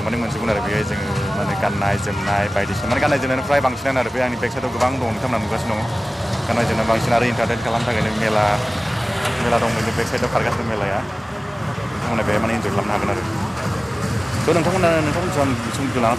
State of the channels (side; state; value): both; normal; correlation 0.97